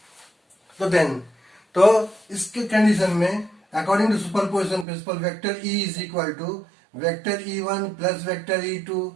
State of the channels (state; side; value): drops out; left; at 4.9 s